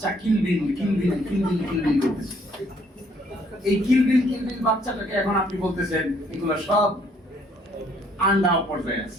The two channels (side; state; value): both; normal; correlation 0.64